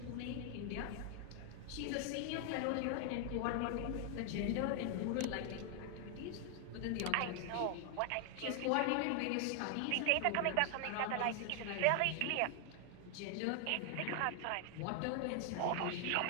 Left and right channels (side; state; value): both; different; correlation 0.00